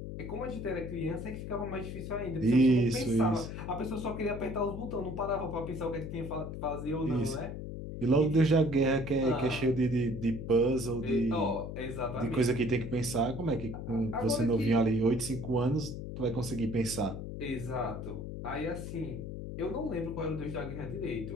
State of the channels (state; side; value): noise; left; hum, 7 dB below the sound